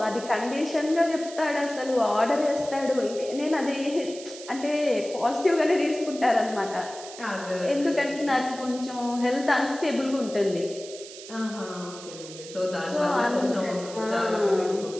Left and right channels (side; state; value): right; noise; hiss, 14 dB below the sound